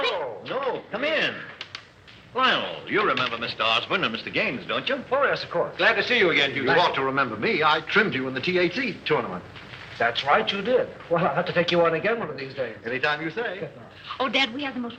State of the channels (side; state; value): both; identical; correlation 1.00